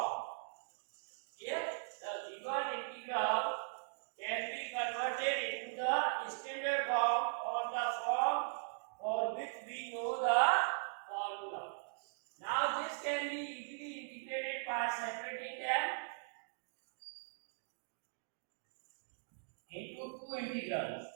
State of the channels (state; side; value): silent; left; digital silence